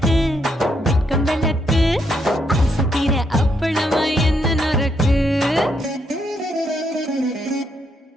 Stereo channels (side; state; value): both; normal; correlation 0.76